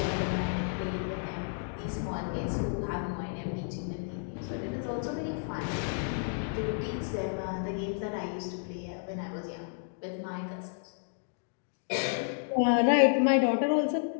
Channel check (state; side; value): silent; right; digital silence